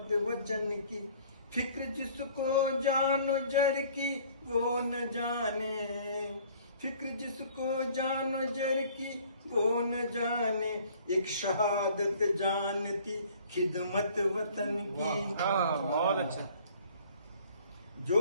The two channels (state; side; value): inverted; both; correlation -0.54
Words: वचन की। फिक्र जिसको जानो जर की वो न जाने, फिक्र जिसको जानो जर की वो न जाने। एक शहादत जानती खिदमत वतन की। बहुत अच्छा। जो